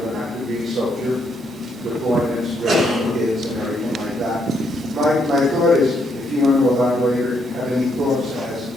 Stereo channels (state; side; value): normal; both; correlation 0.74